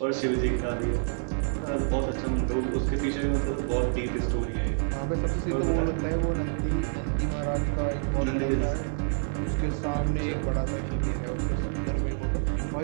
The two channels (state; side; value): silent; left; 59 dB below the other